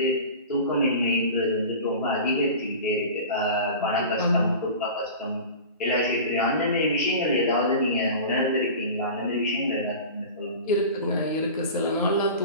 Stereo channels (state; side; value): inverted; both; correlation -0.34